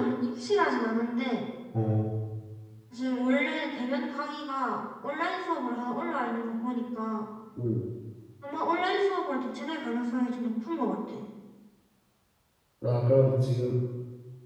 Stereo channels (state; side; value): identical; both; correlation 1.00